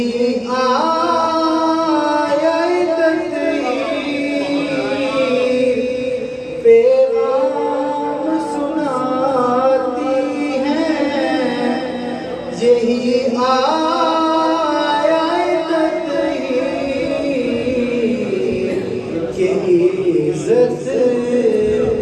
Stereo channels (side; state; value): both; identical; correlation 1.00